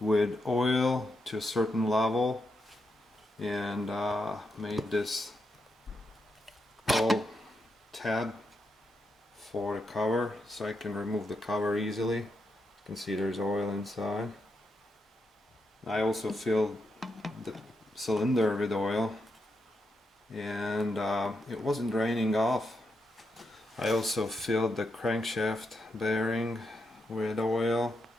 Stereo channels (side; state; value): both; normal; correlation 0.83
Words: oil to a certain level, and made this whole tab for the cover so I can remove the cover easily. You can see there's oil inside. I also filled the cylinder with oil, and it wasn't draining off. I also filled the crankshaft bearing with oil.